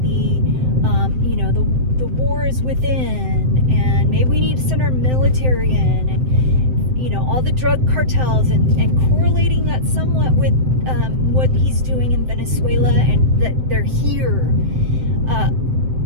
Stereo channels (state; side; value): late; left; 7.8 ms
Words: the war is within, and maybe we need to send our military in, and all the drug cartels, and correlating that somewhat with what he's doing in Venezuela, and that they're here.